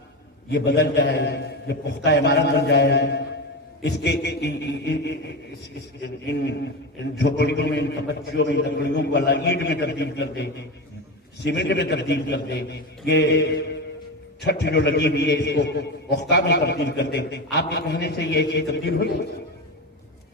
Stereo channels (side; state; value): both; normal; correlation 0.20